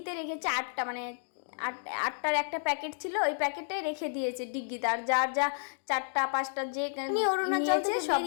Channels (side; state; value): right; silent; digital silence